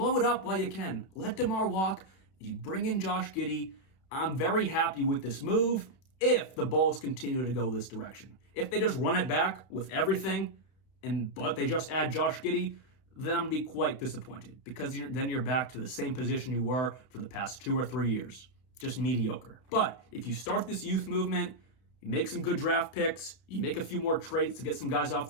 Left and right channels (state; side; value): late; right; 32 ms